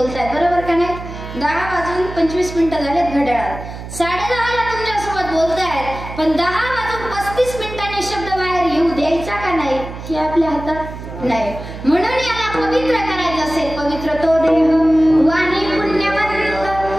बरोबर का नाही? 10:25 झालेत घड्याळात. 10:30ला तुमच्यासोबत बोलतायत, पण 10:35 शब्द बाहेर येऊ द्यायचा का नाही हे आपल्या हातात नाही. म्हणून याला पवित्र करायचं असेल, पवित्र तो देह वाणी पुण्यवंत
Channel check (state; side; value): noise; right; hum, 11 dB below the sound